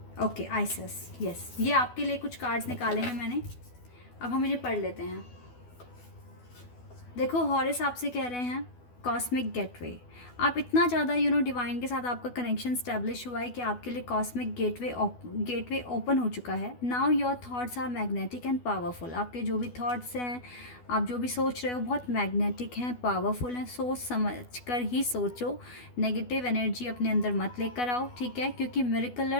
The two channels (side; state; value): right; late; 12 ms